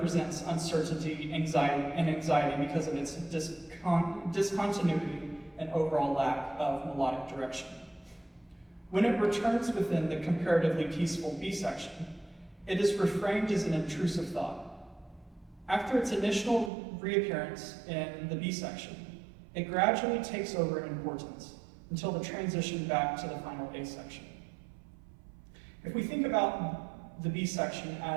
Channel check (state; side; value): drops out; left; at 16.7 s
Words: uncertainty, anxiety because of its discontinuity and overall lack of melodic direction. When it returns within the comparatively peaceful B section, it is reframed as an intrusive thought. After its initial reappearance in the B section, it gradually takes over in importance until the transition back to the final A section. If we think about the B section